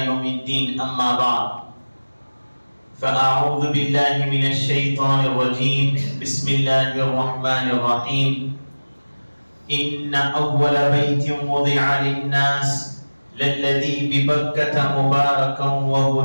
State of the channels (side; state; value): both; inverted; correlation -1.00